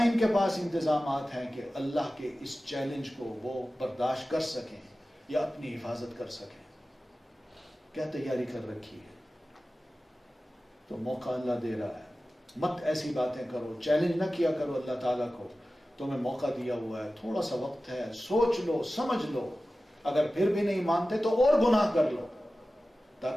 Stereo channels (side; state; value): both; normal; correlation 0.95